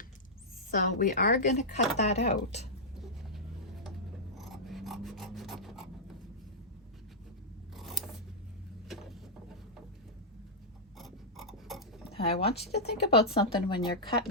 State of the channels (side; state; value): both; normal; correlation -0.10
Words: So we are going to cut that out. I want you to think about something when you're